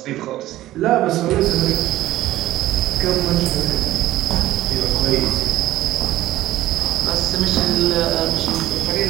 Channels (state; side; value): quieter; left; 15.0 dB